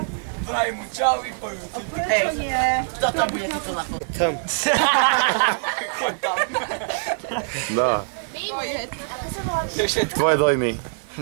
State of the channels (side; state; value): left; silent; 58 dB below the other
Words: Vraj mu čau i pojú. Hej, kto tam bude tuto na fotu? Tam. Choď tam. No. Tvoje dojmy.